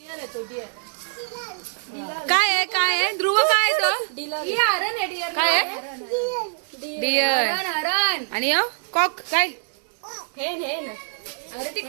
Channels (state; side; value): silent; left; digital silence